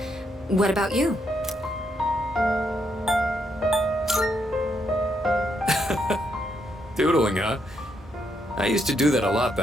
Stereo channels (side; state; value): both; normal; correlation 0.77